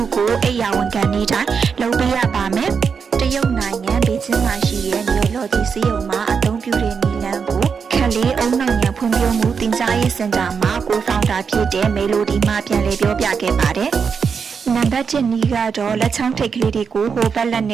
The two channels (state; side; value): quieter; left; 6.0 dB